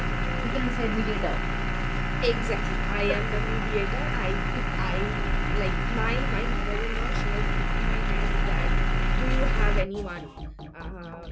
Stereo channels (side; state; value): both; identical; correlation 1.00